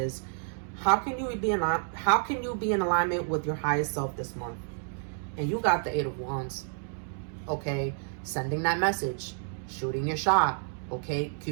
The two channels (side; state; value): left; silent; digital silence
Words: how can you be in alignment with your highest self this month? And you got the Eight of Wands, okay? Sending that message, shooting your shot, okay?